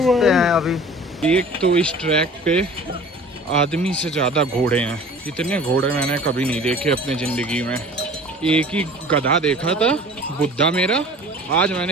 हैं अभी। एक तो इस ट्रैक पे आदमी से ज़्यादा घोड़े हैं। इतने घोड़े मैंने कभी नहीं देखे अपने ज़िंदगी में। एक ही गधा देखा था, बुद्धा मेरा। आज मैंने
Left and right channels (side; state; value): both; normal; correlation 0.44